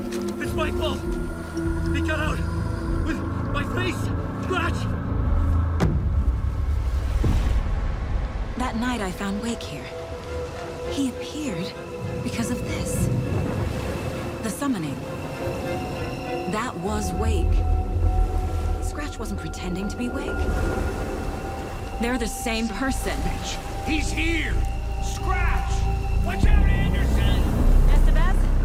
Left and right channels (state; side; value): identical; both; correlation 1.00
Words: It's my fault! He got out! With my face! Scratch! That night I found Wake here. He appeared because of this. The summoning. That was Wake. Scratch wasn't pretending to be Wake. They're the same person. He's here! Scratch! Watch out, Anderson!